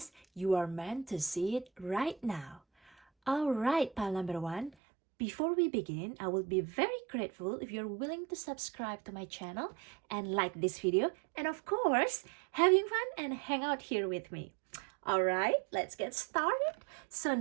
You are meant to see it right now. Alright, pile number 1. Before we begin, I will be very grateful if you're willing to subscribe to my channel and like this video. And of course, having fun and hang out here with me. Alright, let's get started. So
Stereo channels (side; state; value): left; drops out; at 4.7 s